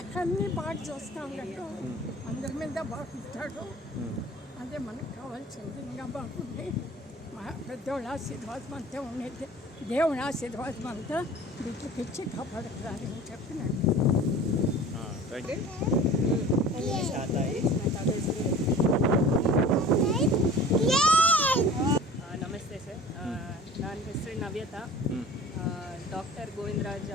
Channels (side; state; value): both; normal; correlation 0.42